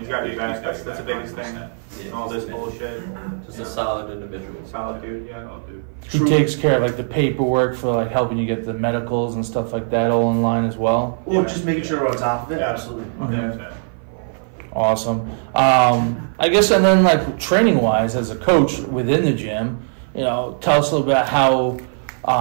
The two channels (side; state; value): left; silent; 56 dB below the other